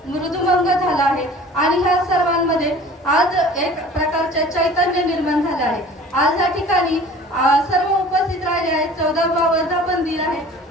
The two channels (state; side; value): normal; both; correlation 0.45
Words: मृदुमंग झालं आहे आणि ह्या सर्वांमध्ये आज एक प्रकारचे चैतन्य निर्माण झालं आहे। आज या ठिकाणी सर्व उपस्थित राहिले आहेत। 14वा वर्धापन दिन आहे